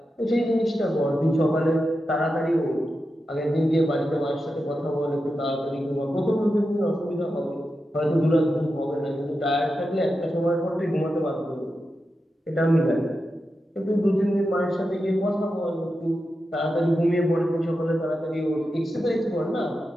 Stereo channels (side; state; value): both; normal; correlation 0.89